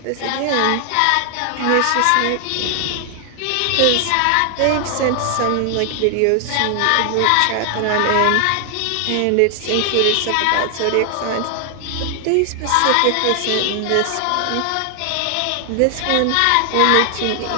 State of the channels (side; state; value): both; different; correlation 0.00